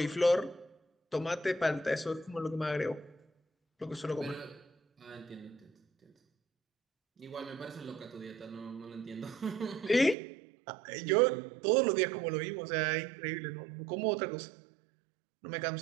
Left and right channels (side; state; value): left; drops out; at 10.2 s